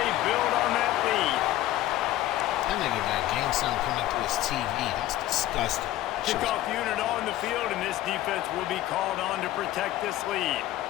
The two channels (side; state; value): right; quieter; 14.6 dB